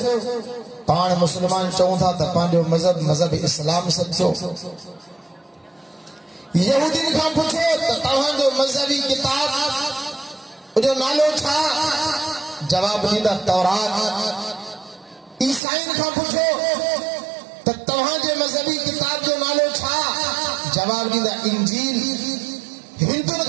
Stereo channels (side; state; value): left; drops out; at 15.6 s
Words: पाण मुसलमान चऊं था त पंहिंजो मजहब इस्लाम सचो। यहूदीन खां पुछो त तव्हांजो मजहबी किताब जो नालो छा? जवाब ॾींदा तौरात। ईसाईन खां पुछो त तव्हांजे मजहबी किताब जो नालो छा? जवाब ॾींदा इंजील। हिंदुनि